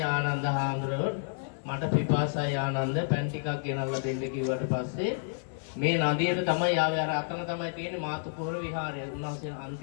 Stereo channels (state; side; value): silent; right; 58 dB below the other